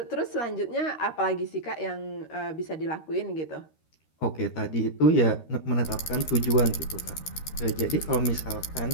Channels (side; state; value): right; late; 13 ms